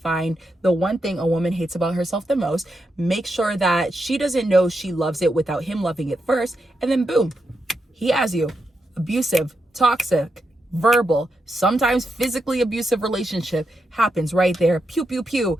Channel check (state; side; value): normal; both; correlation 0.85